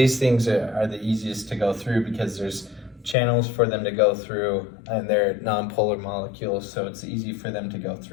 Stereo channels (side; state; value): right; drops out; at 3.2 s